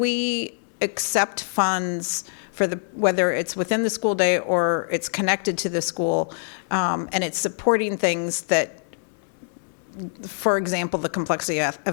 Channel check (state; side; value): silent; right; 59 dB below the other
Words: accept funds for whether it's within the school day or it's connected to the school, and it's supporting things that, for example, the complexity